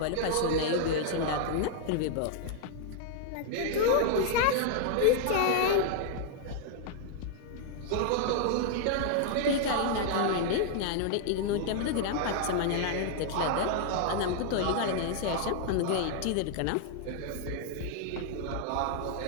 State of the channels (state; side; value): different; both; correlation -0.01